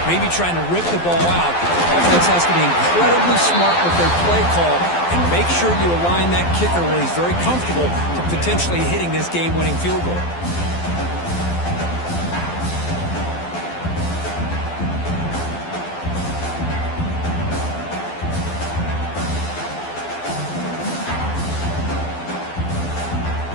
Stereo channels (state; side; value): late; right; 12 ms